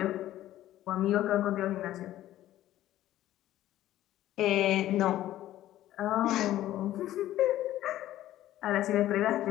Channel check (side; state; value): right; quieter; 13.7 dB